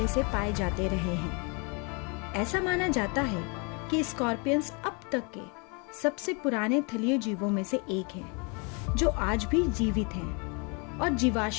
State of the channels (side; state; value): right; quieter; 33.4 dB